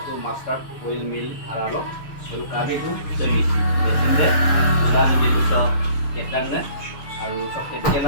master oil mill aralo. Lalu kami itu jadi sehingga dan jadi bisa ketan na. Aru sok kecil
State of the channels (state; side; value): late; right; 6.8 ms